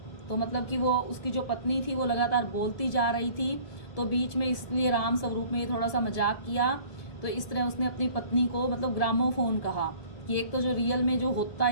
तो मतलब कि वो उसकी जो पत्नी थी वो लगातार बोलती जा रही थी, तो बीच में इसलिए राम स्वरूप में थोड़ा सा मजाक किया। तो इस तरह उसने अपनी पत्नी को मतलब ग्रामोफोन कहा कि एक तो जो रियल में जो होता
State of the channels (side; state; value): right; late; 1.7 ms